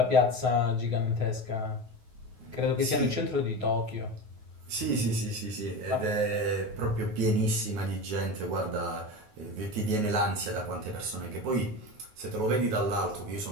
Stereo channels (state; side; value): late; left; 9.4 ms